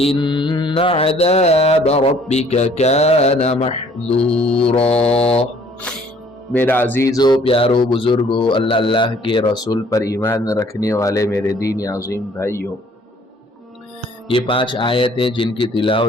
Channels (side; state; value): both; normal; correlation 0.58